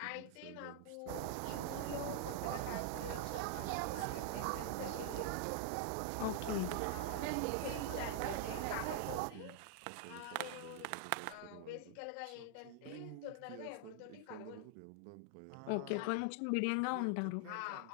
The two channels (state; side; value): different; both; correlation 0.00